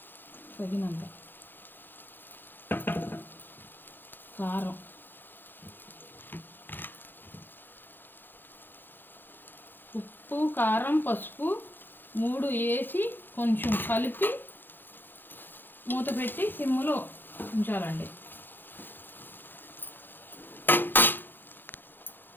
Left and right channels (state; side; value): late; right; 0.095 ms